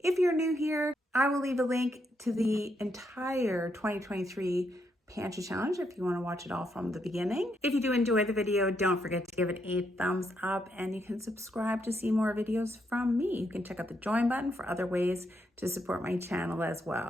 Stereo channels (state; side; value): normal; both; correlation 0.78